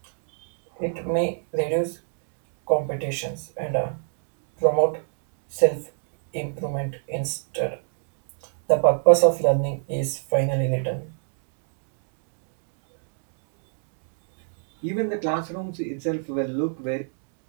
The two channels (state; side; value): silent; left; digital silence